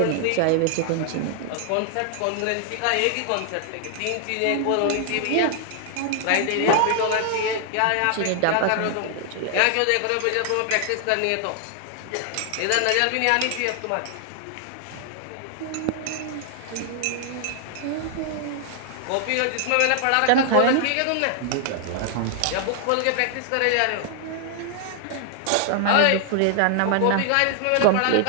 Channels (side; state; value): both; different; correlation 0.00